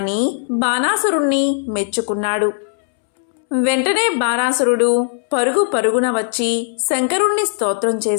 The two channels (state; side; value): silent; right; 68 dB below the other